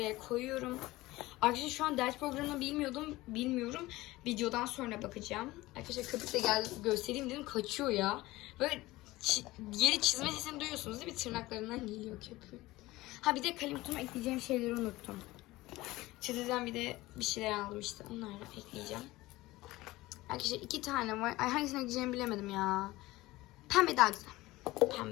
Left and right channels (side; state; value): right; quieter; 18.9 dB